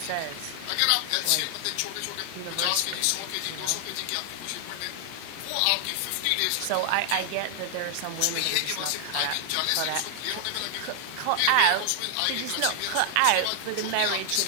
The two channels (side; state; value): both; different; correlation 0.00